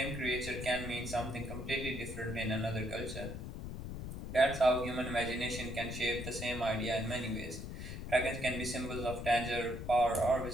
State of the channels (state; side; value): noise; left; rumble, 7 dB below the sound